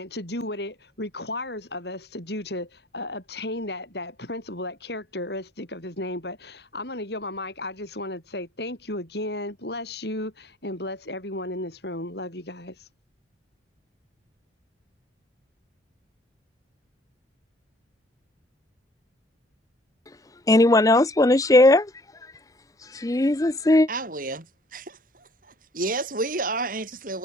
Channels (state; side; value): normal; both; correlation 0.57